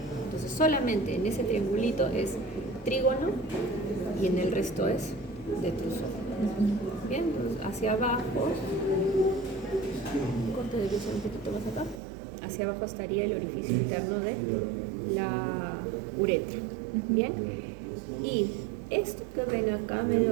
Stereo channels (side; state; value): left; drops out; at 12.0 s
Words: Entonces solamente en ese triangulito es trígono y en el resto es detrusor. Bien, entonces hacia abajo, corte de luz un poquito más acá, hacia abajo estaría el orificio interno de la uretra. Bien, y esto que ven acá,